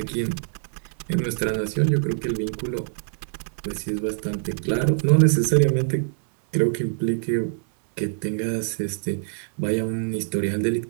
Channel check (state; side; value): silent; left; 60 dB below the other